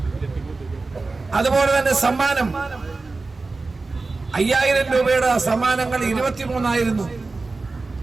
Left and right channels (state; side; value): quieter; left; 3.7 dB